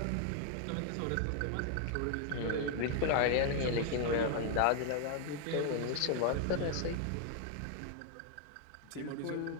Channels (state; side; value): different; both; correlation 0.00